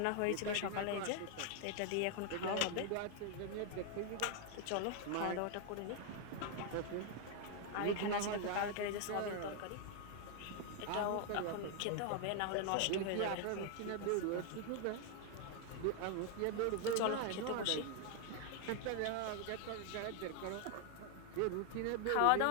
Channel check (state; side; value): different; both; correlation 0.00